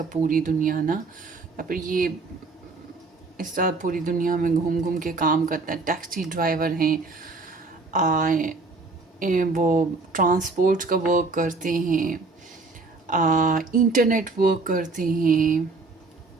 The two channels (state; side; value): quieter; left; 3.8 dB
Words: पूरी दुनिया ना, या फिर ये इस तरह पूरी दुनिया में घूम घूम के काम करते हैं। टैक्सी ड्राइवर हैं, वो ट्रांसपोर्ट का वर्क करते हैं, इंटरनेट वर्क करते हैं,